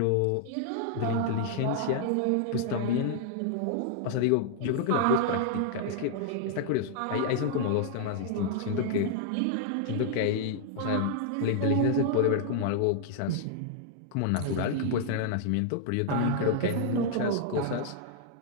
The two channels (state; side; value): different; both; correlation -0.01